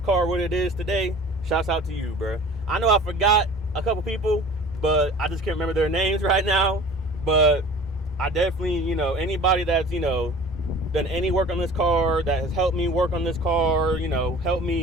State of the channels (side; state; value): both; normal; correlation 0.44